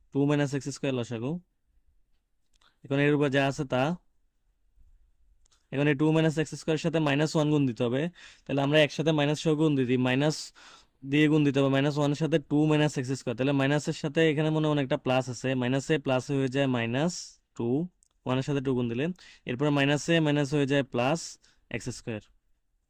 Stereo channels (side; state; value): both; identical; correlation 1.00